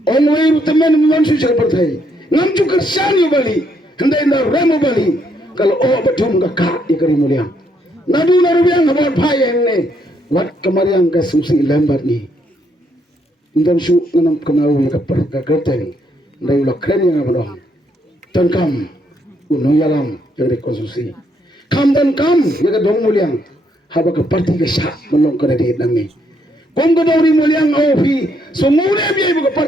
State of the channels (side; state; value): both; normal; correlation 0.73